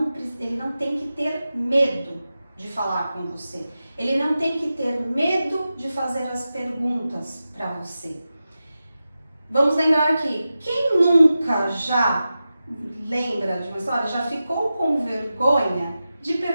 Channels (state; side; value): inverted; both; correlation -0.93